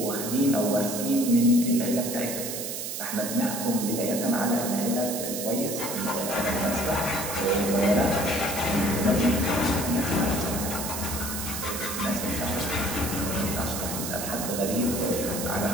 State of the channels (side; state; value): right; noise; hiss, 5 dB below the sound